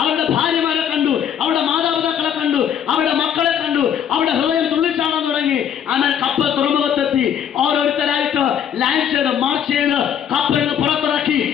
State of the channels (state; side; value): quieter; right; 9.0 dB